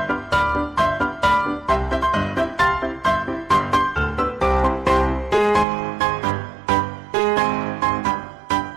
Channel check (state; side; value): drops out; left; at 5.7 s